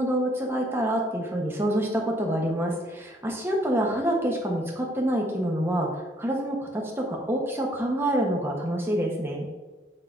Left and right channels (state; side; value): normal; both; correlation 0.65